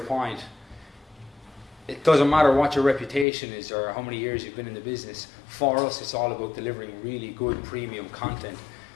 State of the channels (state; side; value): drops out; right; at 3.2 s